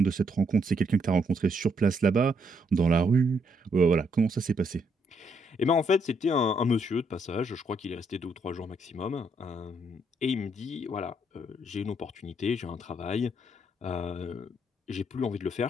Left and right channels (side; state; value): both; normal; correlation 0.73